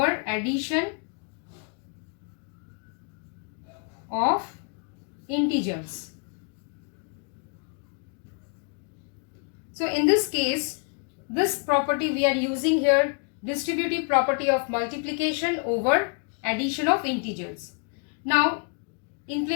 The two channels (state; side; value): quieter; right; 38.9 dB